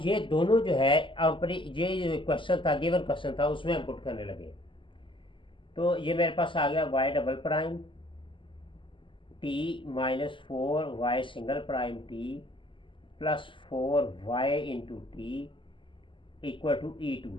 ये दोनों जो है अपनी ये क्वेश्चन था, गिवन क्वेश्चन था, उसमें हम पुट करने लगे। तो ये मेरे पास आ गया y⁻ t minus 4y single prime t plus 4y into t equal to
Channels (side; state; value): right; late; 0.25 ms